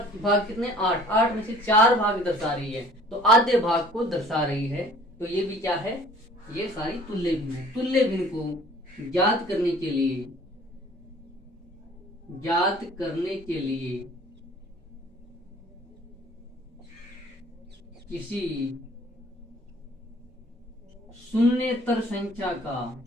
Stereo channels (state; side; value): normal; both; correlation 0.52